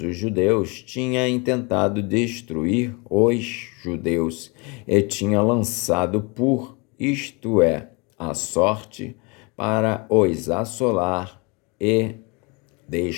os judeus, tinha intentado destruir os judeus e tinha lançado isto é, a sorte, para os assolar e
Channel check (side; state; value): right; quieter; 30.0 dB